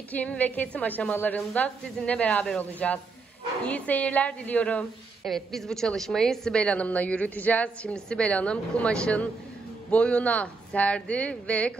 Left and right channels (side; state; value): left; quieter; 4.2 dB